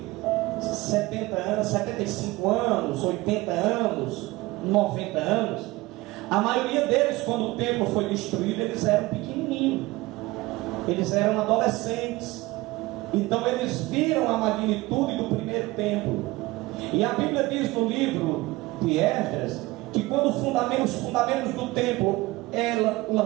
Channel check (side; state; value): left; quieter; 20.5 dB